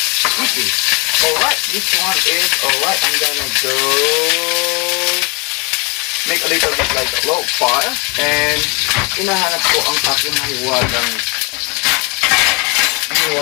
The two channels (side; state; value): right; quieter; 30.6 dB